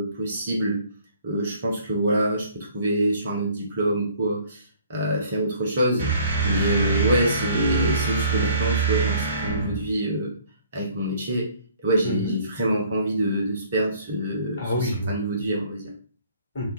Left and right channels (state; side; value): inverted; both; correlation -0.56